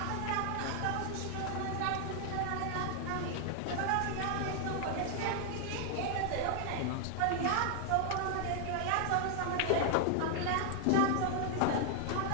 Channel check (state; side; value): different; both; correlation 0.00